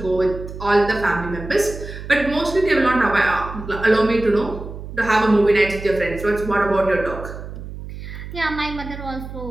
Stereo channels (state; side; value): noise; right; hum, 11 dB below the sound